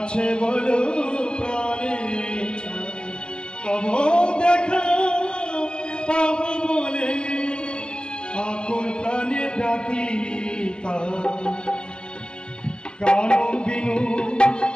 বলো প্রাণে ছাই তব দেখা পাব বলে আকুল প্রাণে ডাকি কান বিনু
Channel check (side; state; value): right; late; 0.049 ms